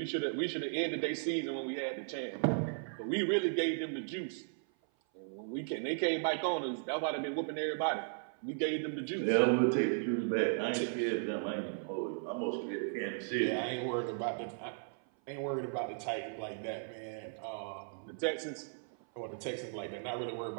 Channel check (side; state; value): left; silent; 54 dB below the other